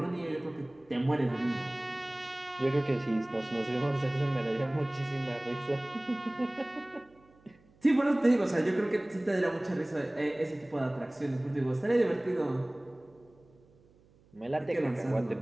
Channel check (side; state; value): right; noise; hum, 30 dB below the sound